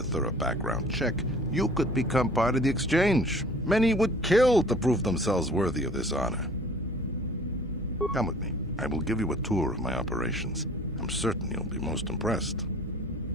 thorough background check, you could become part of the Exchange. Many would kill to prove themselves worthy of this honor. Come with me. I will give you a tour of my operations. I'm certain you'll be most impressed.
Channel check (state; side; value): normal; both; correlation 0.49